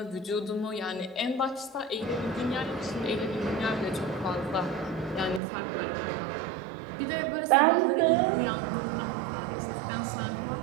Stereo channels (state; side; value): drops out; left; at 5.4 s